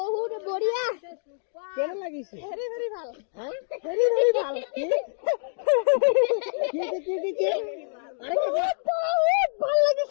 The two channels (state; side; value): silent; right; digital silence